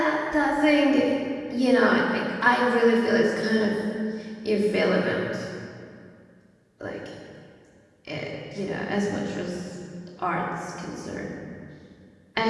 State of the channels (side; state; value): both; identical; correlation 1.00